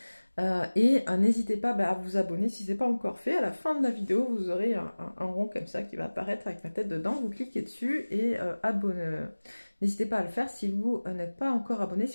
N'hésitez pas à vous abonner si ce n'est pas encore fait. À la fin de la vidéo, vous aurez un rond comme ça qui va apparaître avec ma tête dedans. Vous cliquez dessus et abonnez. N'hésitez pas à le faire si vous n'êtes pas encore abonné,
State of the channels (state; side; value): inverted; both; correlation -1.00